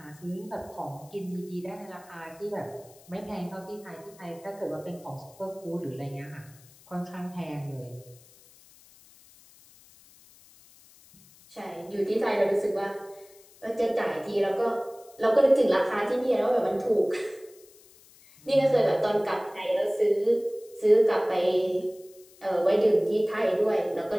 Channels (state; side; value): noise; left; hiss, 25 dB below the sound